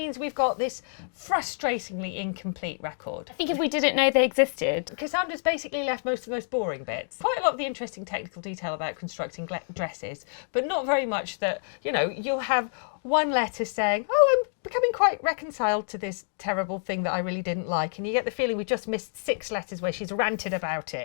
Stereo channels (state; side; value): silent; right; digital silence